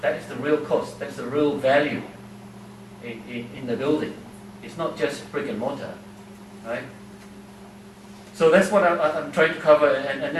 That is the real cost. That's the real value in the building. It's not just brick and mortar, right? So that's what I'm trying to cover. And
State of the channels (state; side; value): identical; both; correlation 1.00